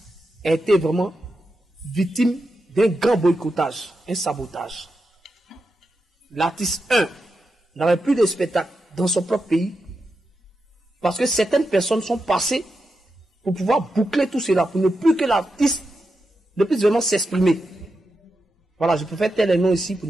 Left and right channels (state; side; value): normal; both; correlation 0.88